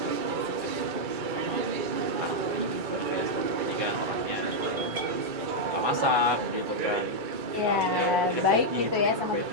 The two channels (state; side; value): late; left; 2.3 ms